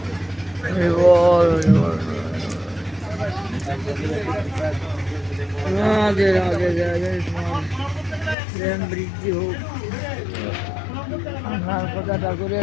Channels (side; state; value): right; drops out; at 8.3 s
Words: রাধে রাধে রাধে প্রেম বৃদ্ধি হোক। আপনার কথাটা করে